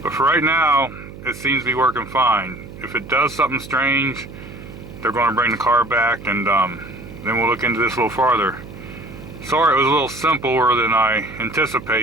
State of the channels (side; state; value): right; noise; hum, 15 dB below the sound